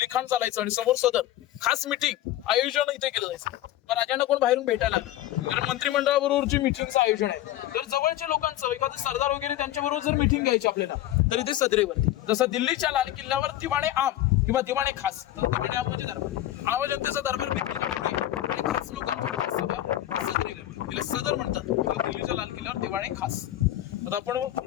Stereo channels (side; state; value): right; quieter; 13.8 dB